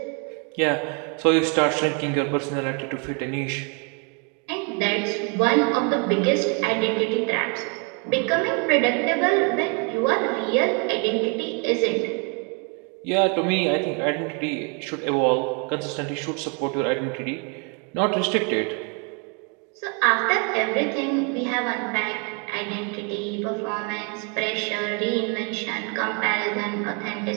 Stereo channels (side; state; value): left; quieter; 36.2 dB